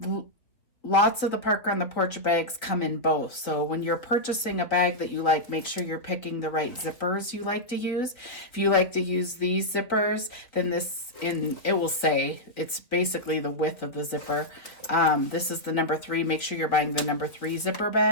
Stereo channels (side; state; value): right; late; 3.6 ms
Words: lots of the Parker on the Porch bags come in both. So when you're purchasing a bag that you like, make sure you're picking the right zippers you like to use. If you like to use these zippers, then it will say it's basically the width of the zipper. This is the number 3. Make sure you're buying the number 3 zipper